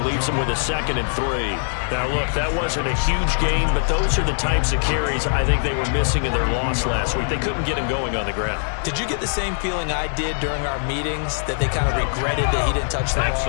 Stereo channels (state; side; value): silent; right; 57 dB below the other